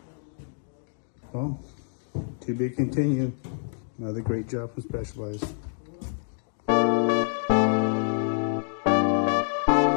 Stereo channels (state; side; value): silent; right; 60 dB below the other